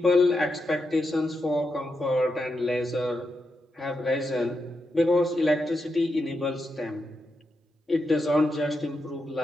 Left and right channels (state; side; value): normal; both; correlation 0.85